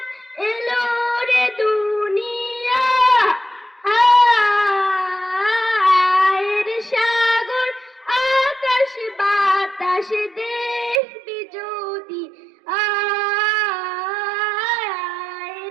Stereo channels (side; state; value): left; drops out; at 11.0 s